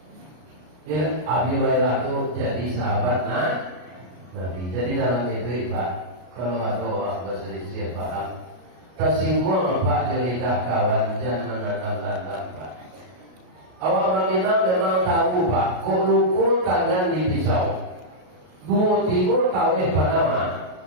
Ya, Abi Hurairah itu jadi sahabat Nabi. Jadi dalam itu Pak, kalau ada orang berselisih paham, tersinggung Pak ketika kawan jangan mendatangkan Pak. Awak orang ini memang tahu Pak, kok luku tangan di pisau, dua timur tahu Panama,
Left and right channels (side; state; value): left; late; 33 ms